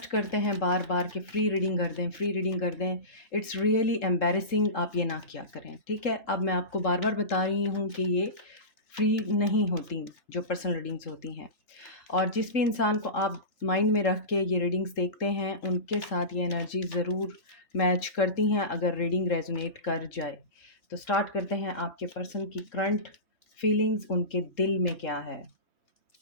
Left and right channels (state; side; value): late; right; 3.7 ms